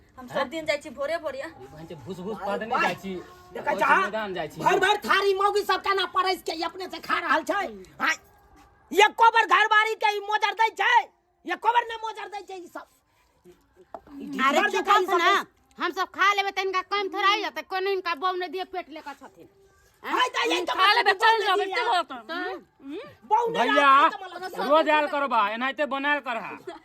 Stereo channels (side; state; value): both; identical; correlation 1.00